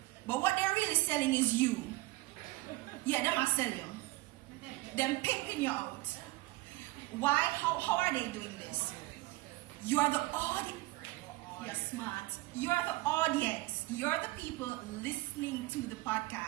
But what they're really selling is you. Yeah, them are selling you. Them pimping you out. Why? How are they doing this? You are the audience. You're smart. You are the audience. You're the people listening to the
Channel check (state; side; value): quieter; left; 20.9 dB